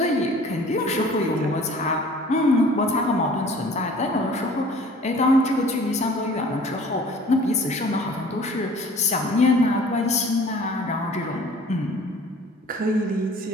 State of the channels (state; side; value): normal; both; correlation 0.49